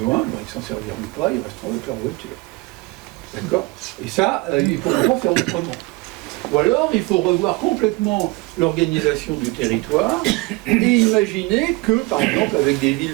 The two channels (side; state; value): left; quieter; 23.6 dB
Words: ben, ils s'en serviront pas, ils resteront avec leur voiture. D'accord? Et ça, il faut pas faire autrement. Ou alors, il faut revoir complètement l'organisation du territoire et imaginer que, par exemple, avec des